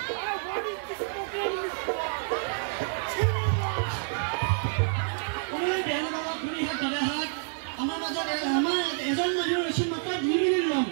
ওই বেলা বাবা খুনি হাত ধরে হাত আমার মাজত আমার এজন মানুহ ৰৈছিল মাত্ৰ 2 মিনিট লম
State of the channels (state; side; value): silent; left; digital silence